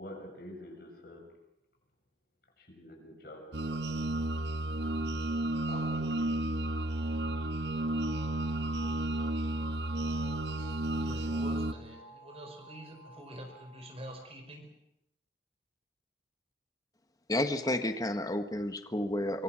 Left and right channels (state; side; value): normal; both; correlation 0.62